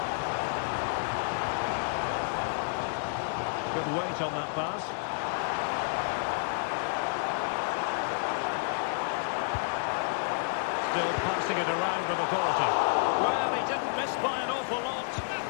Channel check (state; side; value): silent; right; 58 dB below the other